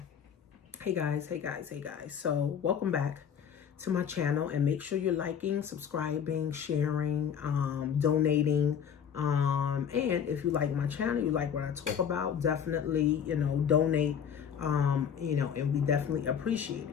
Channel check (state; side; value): quieter; right; 7.9 dB